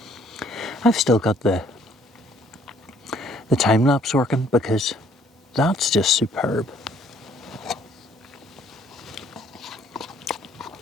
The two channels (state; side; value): normal; both; correlation 0.62